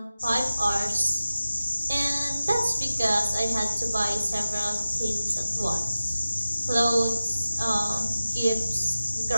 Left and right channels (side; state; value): both; inverted; correlation -0.95